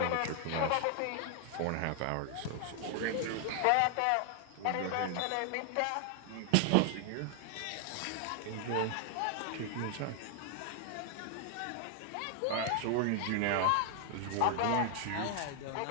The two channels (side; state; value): both; different; correlation 0.00